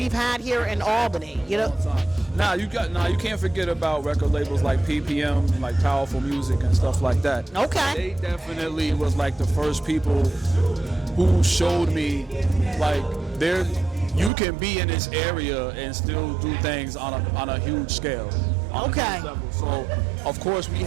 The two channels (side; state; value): left; drops out; at 14.3 s